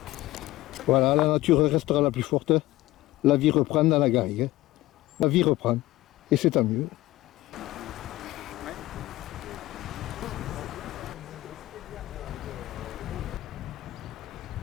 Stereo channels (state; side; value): quieter; right; 17.4 dB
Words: Voilà, la nature restera la plus forte. La vie reprend dans la garrigue. La vie reprend et c'est tant mieux.